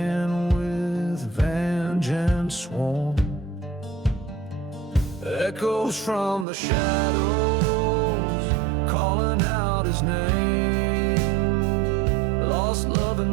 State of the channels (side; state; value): left; drops out; at 6.5 s